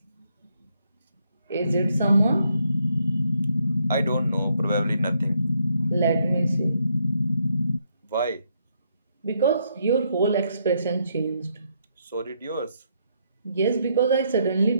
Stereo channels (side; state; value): both; inverted; correlation -0.74